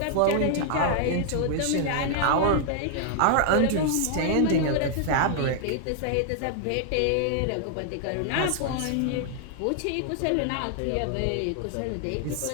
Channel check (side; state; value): both; different; correlation 0.00